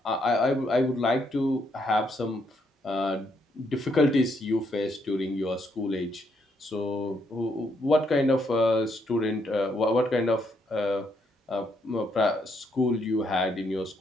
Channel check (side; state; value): both; normal; correlation 0.74